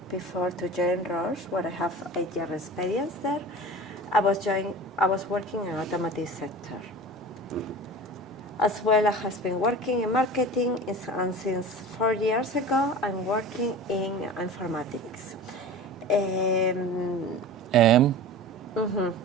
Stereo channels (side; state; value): both; normal; correlation 0.35